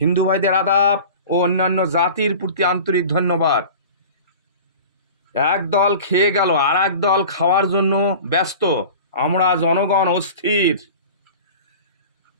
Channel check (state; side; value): inverted; both; correlation -0.38